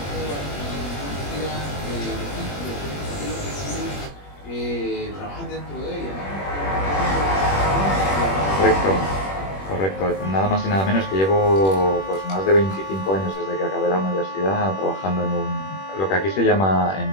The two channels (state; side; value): late; right; 21 ms